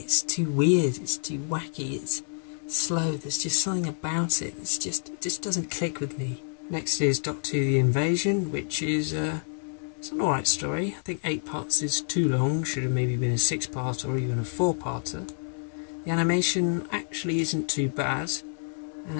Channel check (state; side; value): silent; right; digital silence